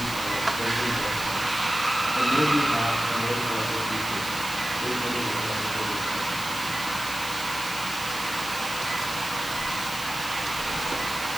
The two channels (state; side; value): noise; left; hiss, 9 dB below the sound